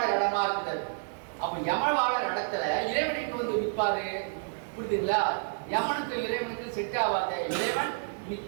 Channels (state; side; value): silent; left; digital silence